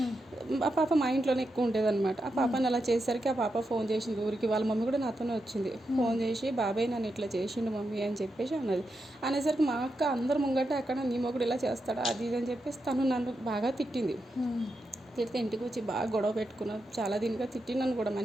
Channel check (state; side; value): normal; both; correlation 0.86